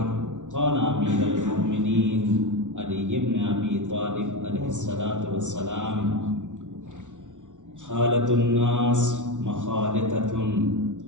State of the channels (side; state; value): left; late; 0.86 ms